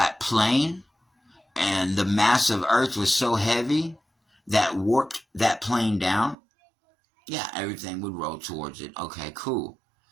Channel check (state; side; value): drops out; left; at 6.4 s